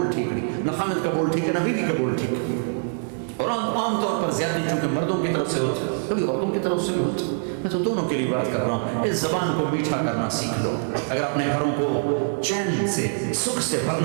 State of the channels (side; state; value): left; silent; 62 dB below the other